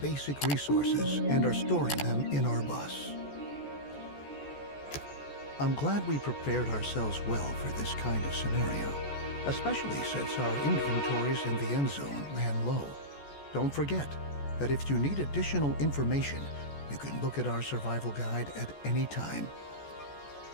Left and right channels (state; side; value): late; right; 14 ms